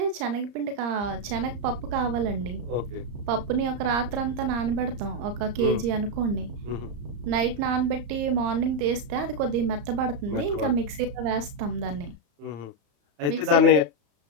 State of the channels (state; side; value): late; left; 34 ms